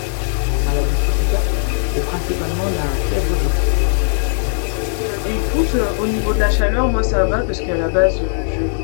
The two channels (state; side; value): silent; right; digital silence